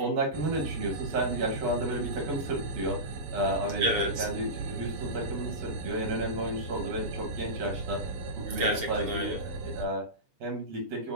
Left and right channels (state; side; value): late; left; 7.0 ms